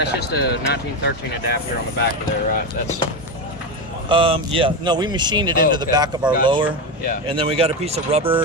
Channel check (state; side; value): normal; both; correlation 0.15